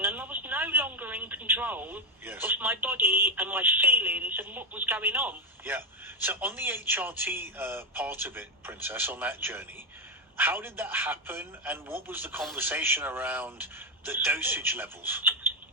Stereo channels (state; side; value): normal; both; correlation 0.07